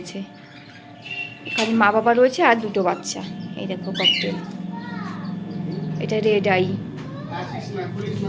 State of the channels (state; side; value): identical; both; correlation 1.00